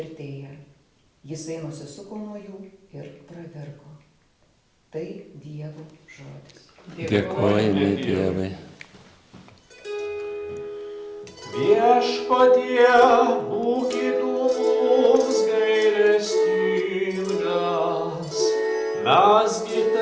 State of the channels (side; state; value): both; identical; correlation 1.00